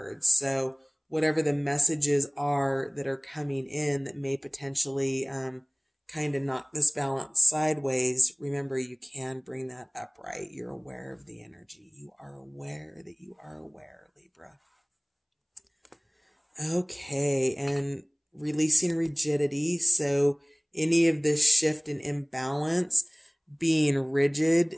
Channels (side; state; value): both; identical; correlation 1.00